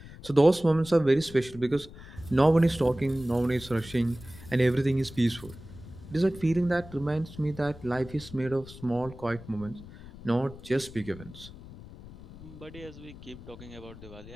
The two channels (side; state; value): left; noise; rumble, 17 dB below the sound